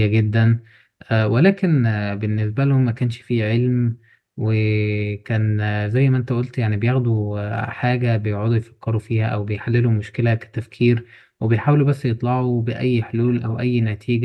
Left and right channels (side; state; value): both; identical; correlation 1.00